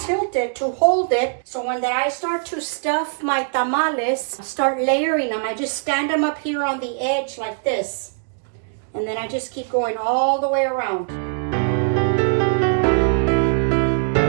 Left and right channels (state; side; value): silent; left; digital silence